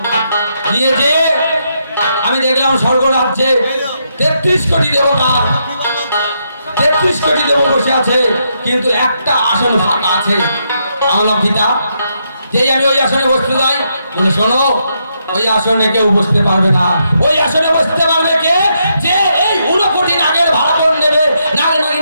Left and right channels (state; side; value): inverted; both; correlation -0.79